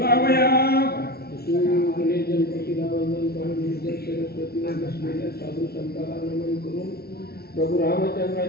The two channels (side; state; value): right; late; 0.45 ms